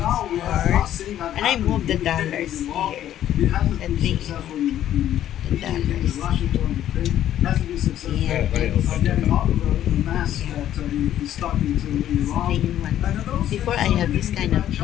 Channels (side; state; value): right; quieter; 11.7 dB